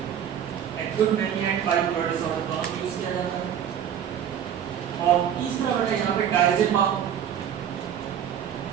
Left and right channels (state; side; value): quieter; left; 9.3 dB